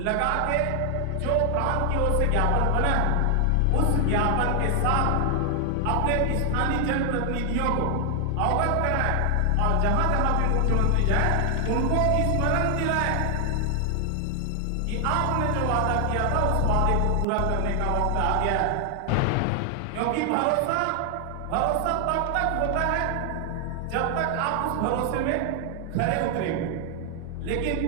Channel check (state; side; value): different; both; correlation 0.00